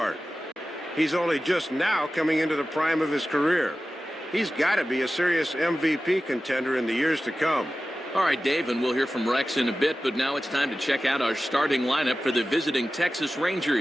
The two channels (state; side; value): normal; both; correlation 0.95